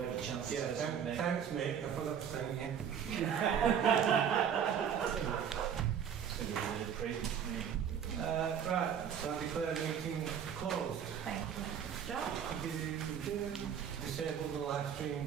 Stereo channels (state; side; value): quieter; left; 8.2 dB